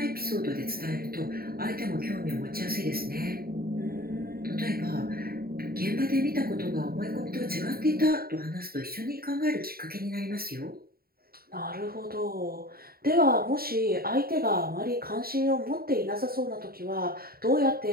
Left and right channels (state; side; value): late; left; 0.44 ms